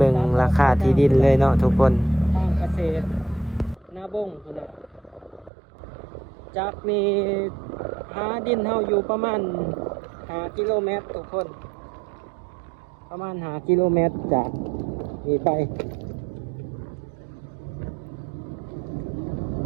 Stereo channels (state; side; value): drops out; left; at 5.5 s